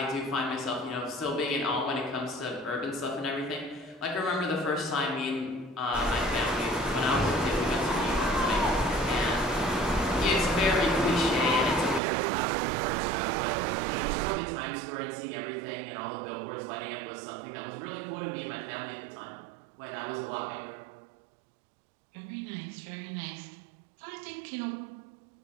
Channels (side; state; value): left; drops out; at 12.0 s